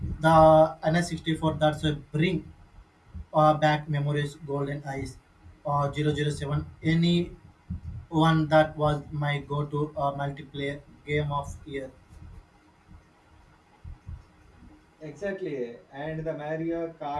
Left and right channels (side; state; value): both; identical; correlation 1.00